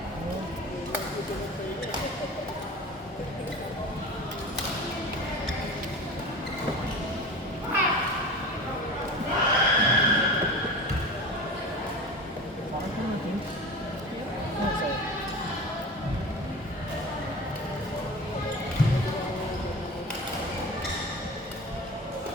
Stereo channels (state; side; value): normal; both; correlation 0.33